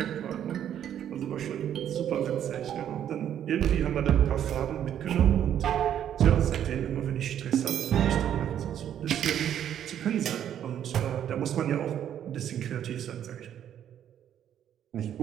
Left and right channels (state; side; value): quieter; left; 10.1 dB